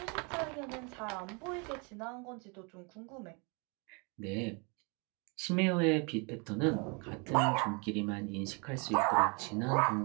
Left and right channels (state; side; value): quieter; left; 32.7 dB